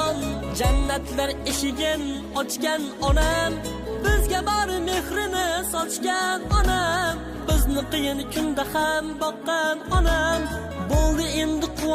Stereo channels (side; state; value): both; identical; correlation 1.00